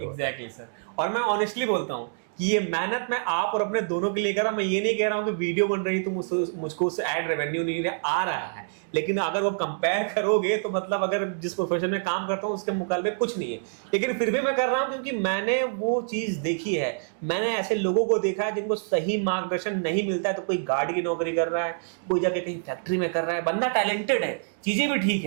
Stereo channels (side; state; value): left; silent; digital silence